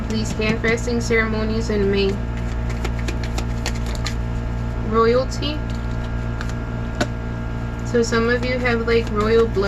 these hand fasting ceremonies in May. Royalty. So some of you have like royal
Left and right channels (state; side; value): identical; both; correlation 1.00